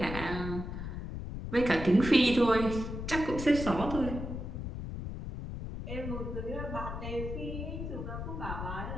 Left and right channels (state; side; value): noise; left; rumble, 6 dB below the sound